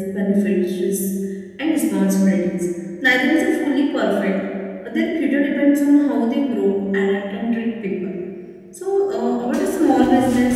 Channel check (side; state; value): both; identical; correlation 1.00